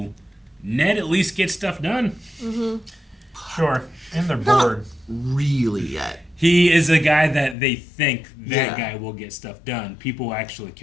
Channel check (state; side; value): drops out; right; at 7.6 s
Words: Ned at least gets stuff done. Sure. And they're Not bored. really yet. He is a guy that they think that guy will get stuff done. People actually